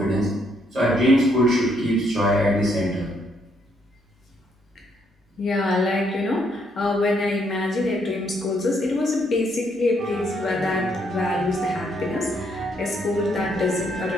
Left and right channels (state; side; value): normal; both; correlation 0.72